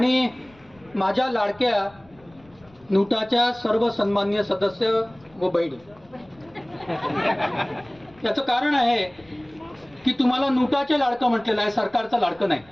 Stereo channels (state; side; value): noise; left; rumble, 28 dB below the sound